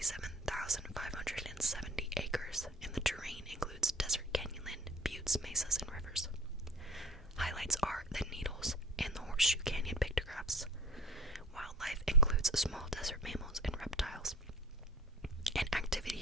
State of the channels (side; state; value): both; normal; correlation 0.41